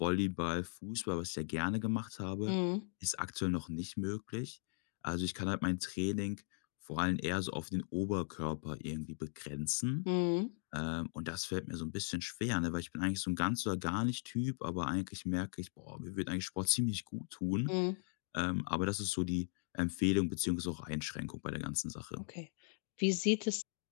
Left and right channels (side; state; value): right; silent; 52 dB below the other